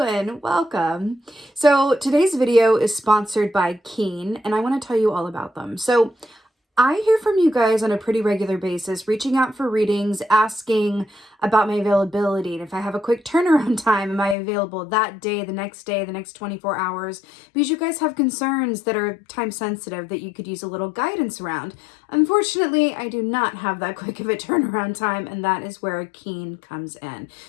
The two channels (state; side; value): drops out; right; at 14.4 s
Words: Welcome. So today's video is sponsored by Keen, and I want to tell you all about them. So I hear from you guys on a pretty regular basis, reaching out for readings, asking about my availability. And if I have a quick turnaround time, am I available that day, the next 24 hours? Because you guys have concerns that are time sensitive that you could use a little guidance around. Unfortunately, I do not have that quick of a turnaround time, and that is where Keen comes in.